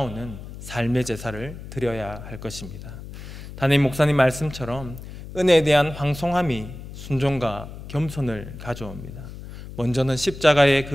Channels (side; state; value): left; noise; hum, 12 dB below the sound